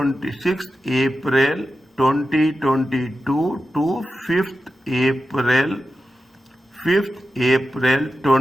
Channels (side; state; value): both; normal; correlation 0.91